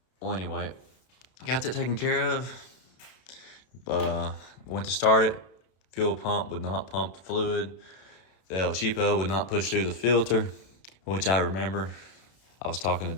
Well, anyway, got that taken care of. Went to start it. Fuel pump would not pump the fluid. The El Cheapo would not push through the filter, which I remember. I was talking to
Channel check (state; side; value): late; right; 32 ms